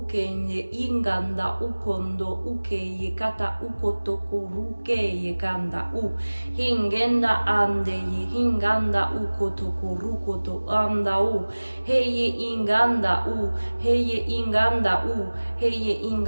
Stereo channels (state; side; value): inverted; both; correlation -1.00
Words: ye inganda ukondo uke ye kata ukoto koruke ye kanda u hingenda ande ye hinganda ukoto korukoto anda u heye inganda u heye inganda u heye